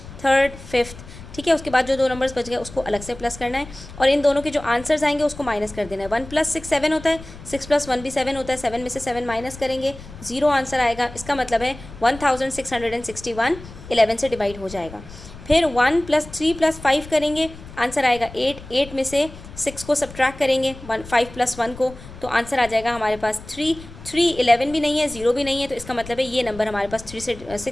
थर्ड, फिफ्थ. ठीक है, उसके बाद जो दो नंबर्स बच गए उसको अलग से प्लस करना है और इन दोनों के जो आंसर्स आएंगे उसको माइनस कर देना है. 1 + 6 7 होता है, 6 + 1 भी 7 होता है. 7 में से 7 माइनस करेंगे, 0 आंसर आएगा. इसका मतलब है 1661 11 से डिवाइड हो जाएगा. फिर 1 + 3 + 5 करेंगे, आंसर आएगा 8. 8 में से 6 को सब्ट्रैक्ट करेंगे 5 + 1 को, तो आंसर आ जाएगा हमारे पास 3. 3 11 भी नहीं है, 0 भी नहीं है, तो इसका मतलब है ये नंबर हमारे पास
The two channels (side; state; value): left; noise; rumble, 16 dB below the sound